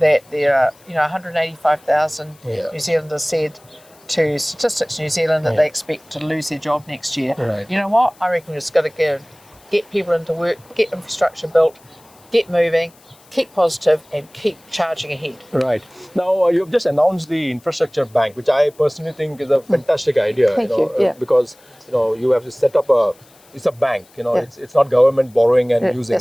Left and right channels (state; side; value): noise; left; hiss, 28 dB below the sound